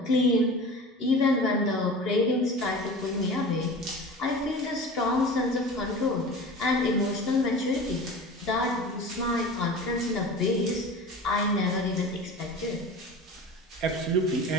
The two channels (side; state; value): both; normal; correlation 0.36